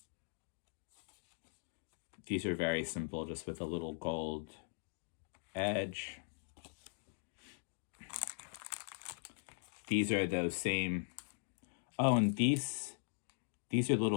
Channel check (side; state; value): right; silent; digital silence